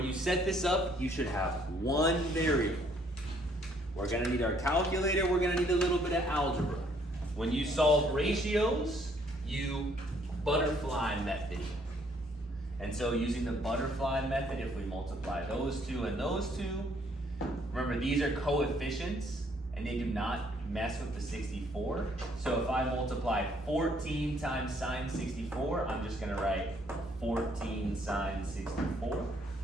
you set this up, you should have one variable. We're gonna need our calculator, we're gonna need a little bit of algebra. When you solve ratios, you butterfly method. And so using the butterfly method, if we multiply those two and those two, remember these are coefficients and they do not mess with the 64. So if I multiply 14 times sine 64, I'm just gonna write 14 sine 64.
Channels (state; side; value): normal; both; correlation 0.65